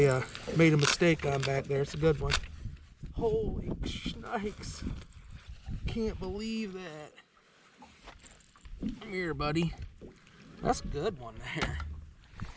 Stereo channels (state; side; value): identical; both; correlation 1.00